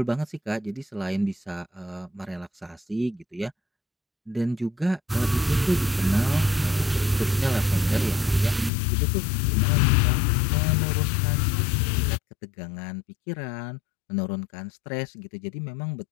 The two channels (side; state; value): right; drops out; at 8.7 s